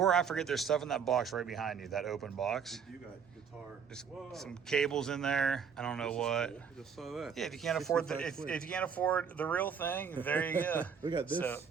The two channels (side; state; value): left; quieter; 6.8 dB